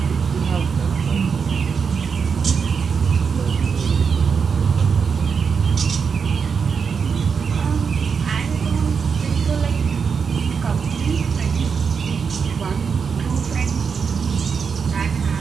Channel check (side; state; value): left; quieter; 6.0 dB